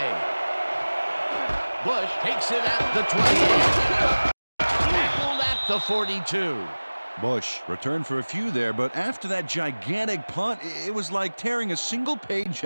Bush takes it at the 28. Tackled at the 42. Bush returned for a few there, but after that gigantic punt, it was like tearing a single page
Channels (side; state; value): both; inverted; correlation -1.00